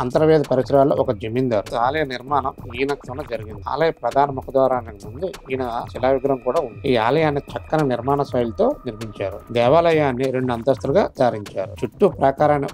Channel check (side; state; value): both; identical; correlation 1.00